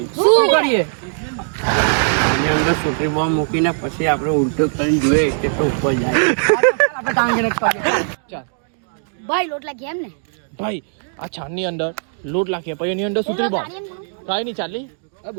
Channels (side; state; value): left; silent; digital silence